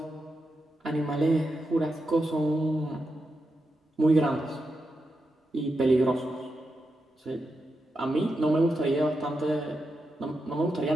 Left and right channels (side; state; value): both; normal; correlation 0.87